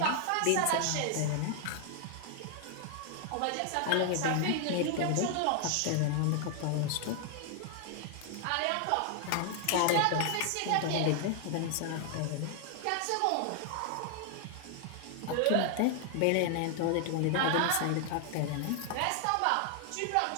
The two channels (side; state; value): both; different; correlation 0.00